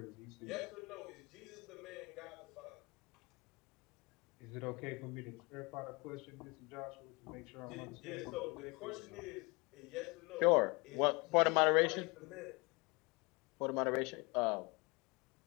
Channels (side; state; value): right; quieter; 27.5 dB